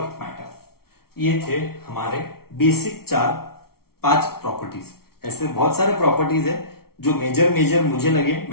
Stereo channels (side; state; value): right; late; 0.94 ms